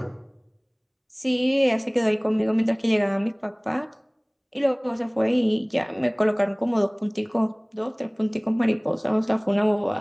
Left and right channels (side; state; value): both; identical; correlation 1.00